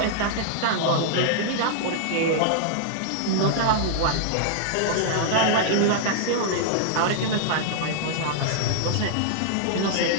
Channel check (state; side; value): different; both; correlation -0.01